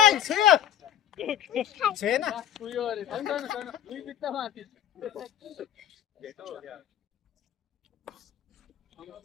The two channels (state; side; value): quieter; right; 10.4 dB